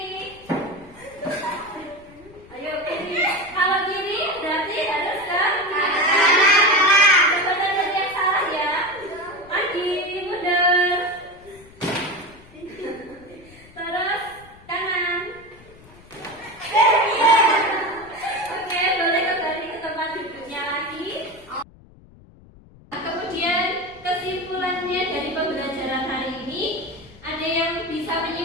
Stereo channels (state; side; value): noise; left; rumble, 24 dB below the sound